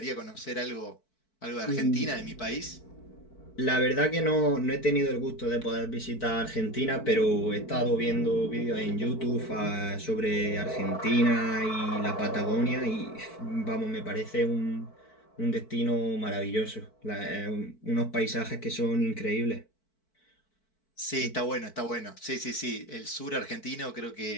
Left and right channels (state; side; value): late; right; 4.6 ms